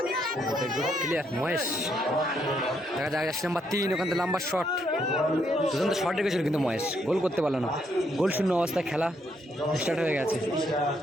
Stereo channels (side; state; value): both; normal; correlation 0.74